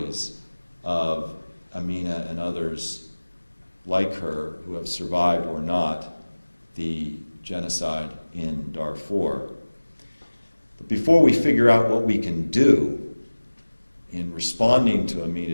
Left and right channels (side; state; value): both; inverted; correlation -1.00